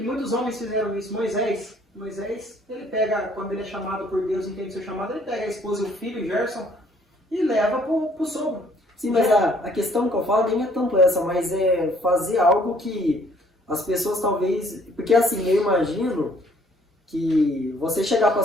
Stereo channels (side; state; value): both; normal; correlation 0.61